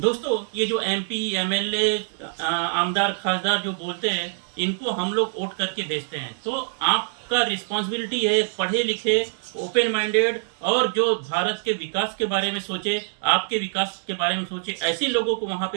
ये जो एमपी एमएलए आमदार खासदार जो बोलते हैं, इनको हम लोग वोट करके भेजते हैं। तो आपका रिस्पॉन्सिबिलिटी है, पढ़े लिखे, ओपन माइंडेड और जो भारत के विकास के बारे में सोचे, आपके विकास के बारे में सोचे, ऐसे लोगों को वहां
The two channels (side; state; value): left; silent; digital silence